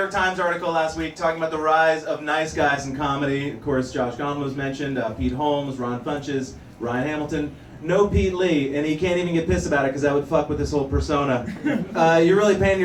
Times article last week talking about the rise of nice guys in comedy. Of course, Josh Gondelman was mentioned, Pete Holmes, Ron Funches, Ryan Hamilton. No Pete Lee, and he can't even get pissed about it because that would fuck with his whole persona. You're really painting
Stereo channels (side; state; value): both; identical; correlation 1.00